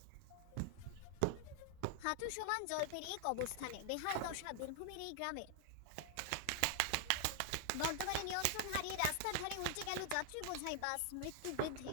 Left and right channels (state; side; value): different; both; correlation 0.00